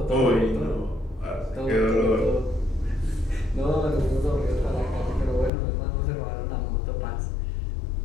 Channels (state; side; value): drops out; right; at 5.5 s